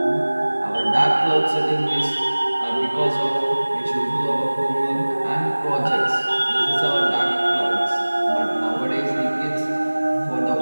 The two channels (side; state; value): both; inverted; correlation -1.00